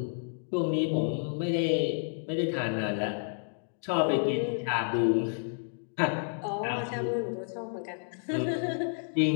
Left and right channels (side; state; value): right; silent; digital silence